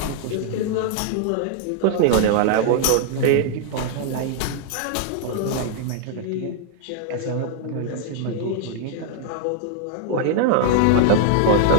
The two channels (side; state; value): both; different; correlation -0.01